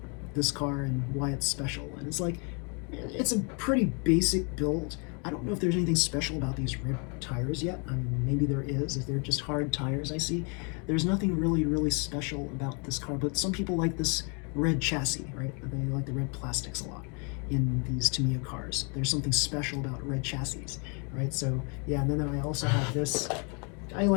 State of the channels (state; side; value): quieter; right; 35.6 dB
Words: this car and why it's special. And it's like, it's a pretty basic build. I don't know if there's anything special about these red tires yet. I mean, maybe there is, if they're just hard tires I see. There's nothing really special about this car, but some people like this red chassis, right? They like the red plastics a lot in these Tamiya cars. There's something special about red chassis, right? So yeah, and then I also have this. I